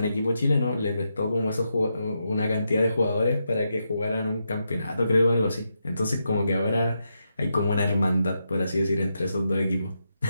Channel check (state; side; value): inverted; both; correlation -0.84